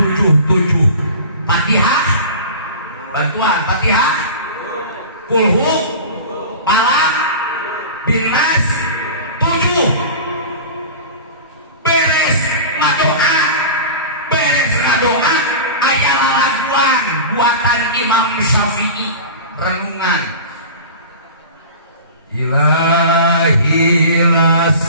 Fatihah bantuan Fatihah kulhu palak binnas 7 beres ngadoa aya lalaguan buatan Imam Syafi'i renungan Ilahi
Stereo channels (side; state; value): both; inverted; correlation -0.34